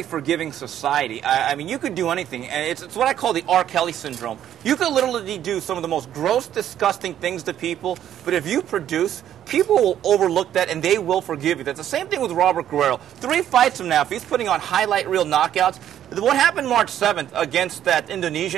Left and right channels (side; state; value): left; quieter; 10.9 dB